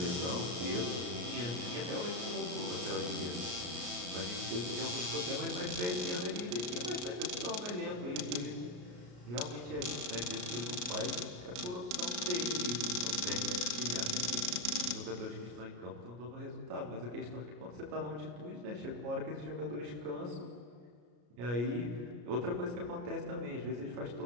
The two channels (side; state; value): left; late; 33 ms